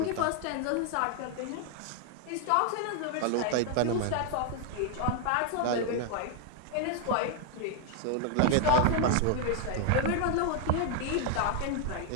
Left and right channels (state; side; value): different; both; correlation 0.00